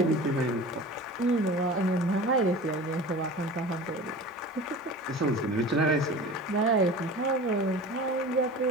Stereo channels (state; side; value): normal; both; correlation 0.37